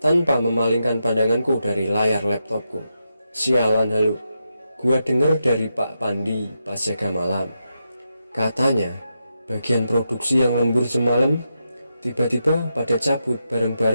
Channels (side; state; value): both; inverted; correlation -0.86